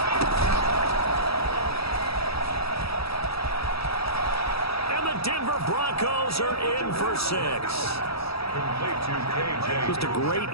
Just a great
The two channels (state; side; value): late; right; 0.77 ms